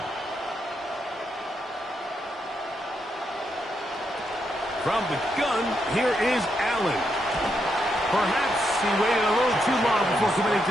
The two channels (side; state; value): both; normal; correlation 0.81